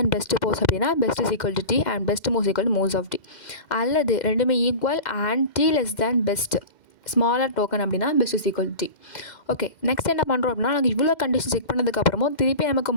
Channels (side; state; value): right; late; 2.1 ms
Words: best pos அப்படின்னா best is equal to T and best moves equal to moves of T. அல்லது ரெண்டுமே equal and T less than best smaller token அப்படின்னா best is equal T. Okay, next என்ன பண்ணுறோம் அப்படின்னா நாங்கள் இவ்வளோ condition check பண்ணதுக்கப்புறமும் திருப்பி நமக்கு